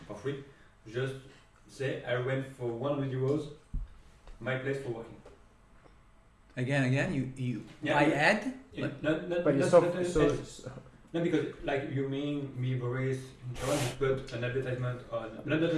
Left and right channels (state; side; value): identical; both; correlation 1.00